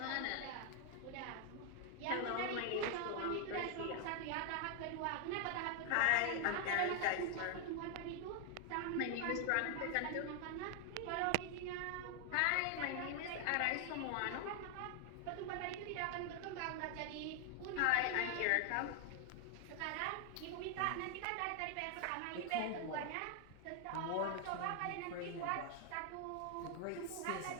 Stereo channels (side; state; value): both; different; correlation 0.00